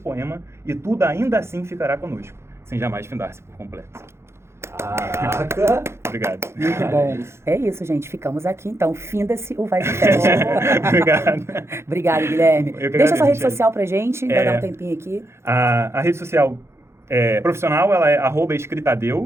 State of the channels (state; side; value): late; left; 0.13 ms